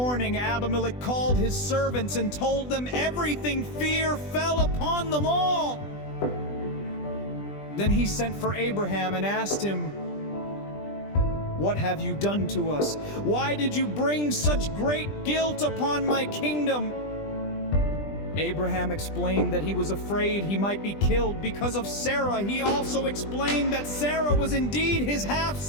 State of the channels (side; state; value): right; late; 20 ms